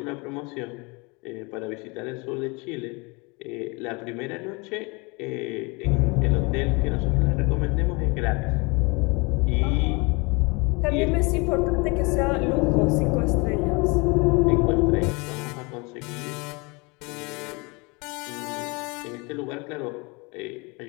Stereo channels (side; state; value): right; quieter; 28.4 dB